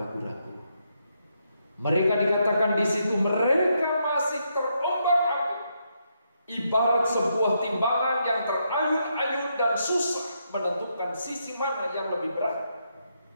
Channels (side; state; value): both; inverted; correlation -0.79